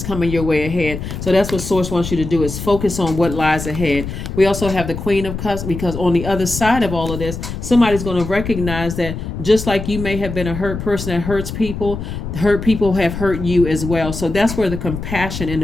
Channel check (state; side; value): noise; left; rumble, 7 dB below the sound